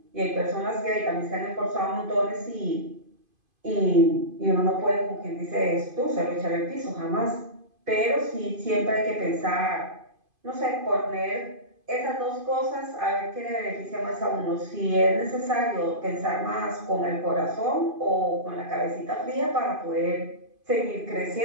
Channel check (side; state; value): left; late; 2.5 ms